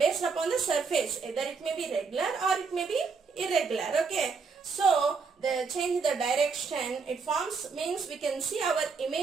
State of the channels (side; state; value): left; quieter; 5.0 dB